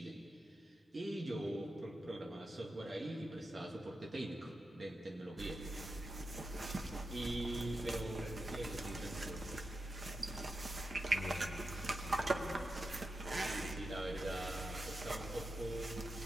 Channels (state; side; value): normal; both; correlation 0.89